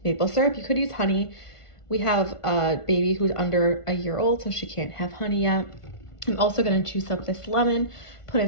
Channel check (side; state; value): right; late; 1.5 ms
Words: maple syrup. You could use honey. We have a baby who's under a year old, so she can't have honey yet. I'm also gonna juice up this lemon, put